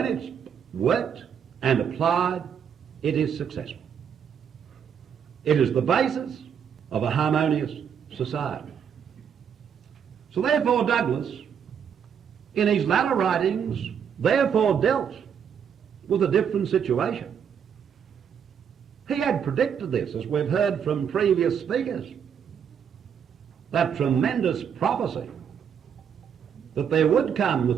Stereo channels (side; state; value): left; quieter; 7.8 dB